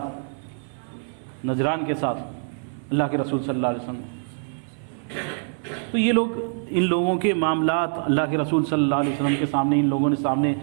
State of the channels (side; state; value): left; silent; 56 dB below the other